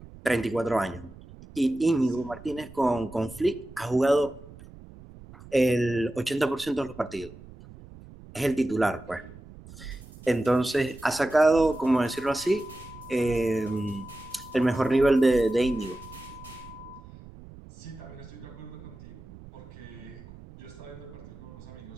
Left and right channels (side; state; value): right; noise; rumble, 18 dB below the sound